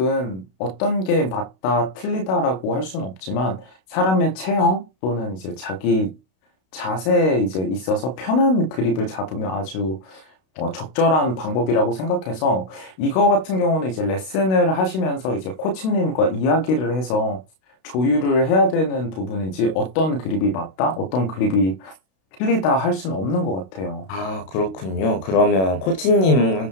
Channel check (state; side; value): late; right; 32 ms